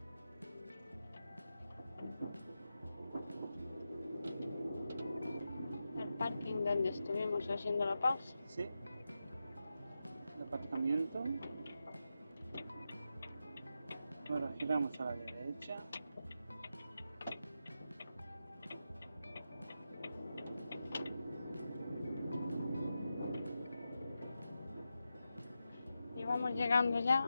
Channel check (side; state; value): both; inverted; correlation -0.90